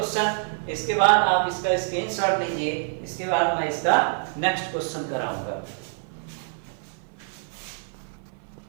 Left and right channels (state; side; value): silent; left; 55 dB below the other